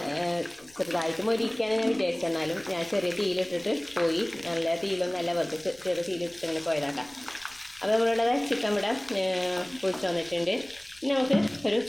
ചെറുതായിട്ട് മൊരിക്കാൻ ഞാൻ വിചാരിച്ചെന്നാലും ഞാൻ ചെറിയ തീയിലിട്ടിട്ട് പോയി. നല്ല തീയിലൊന്നല്ല, വെറുതെ ചെറിയ തീയിലിട്ടിട്ട് ഇങ്ങനെ പോയതാക്കാം. അപ്പോൾ നമ്മളുടെ ചിക്കൻ ഇവിടെ പൊരിച്ച് വന്നിട്ടുണ്ട്. ഇനി നമുക്ക് ഒരു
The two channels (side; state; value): left; noise; rumble, 28 dB below the sound